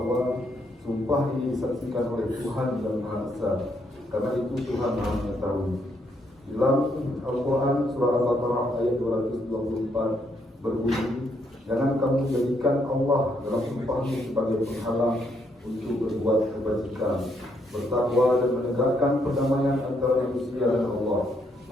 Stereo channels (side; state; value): both; normal; correlation 0.74